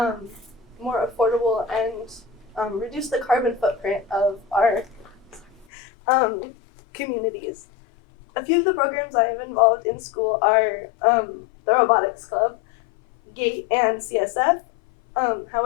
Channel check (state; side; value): drops out; right; at 5.7 s